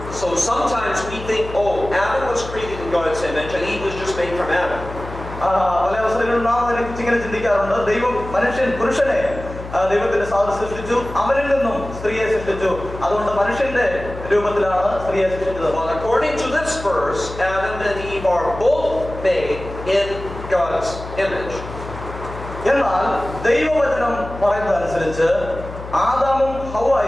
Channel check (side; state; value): left; noise; hum, 11 dB below the sound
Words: So sometimes we think, oh, Adam was created in God's image and Eve was just made from Adam. പല അവസരങ്ങളിലും നാം ഇങ്ങനെ ചിന്തിക്കാറുണ്ട്. ദൈവം പുരുഷനെ ദൈവത്തിന്റെ സാദൃശ്യം സൃഷ്ടിച്ചു, അവരിൽ നിന്നും സ്ത്രീയെ സൃഷ്ടിച്ചു, അതുകൊണ്ട് മനുഷ്യന്റെ രൂപത്തിലാണ് സ്ത്രീയെ സൃഷ്ടിച്ചത്. Well, according to this verse, Adam and Eve are both made in God's image. എന്നാൽ ദൈവവചനം പറയുന്നതനുസരിച്ച് ആദാമും